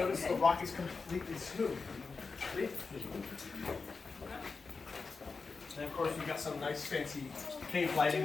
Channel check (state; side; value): quieter; right; 4.5 dB